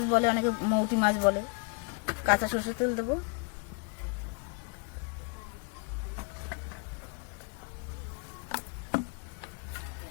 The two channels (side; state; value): right; quieter; 36.8 dB